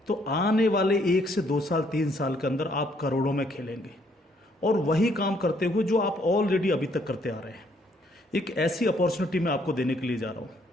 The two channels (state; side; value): normal; both; correlation 0.68